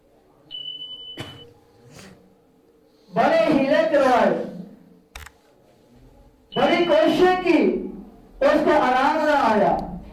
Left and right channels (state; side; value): identical; both; correlation 1.00